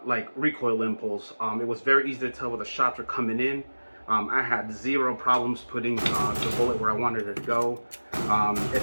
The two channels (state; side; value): inverted; both; correlation -1.00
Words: like recoil impulse. It was very easy to tell where the shots were coming in. I had zero problems putting the bullet where I wanted it to go. It